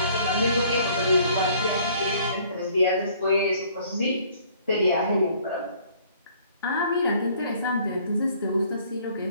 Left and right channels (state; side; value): inverted; both; correlation -0.58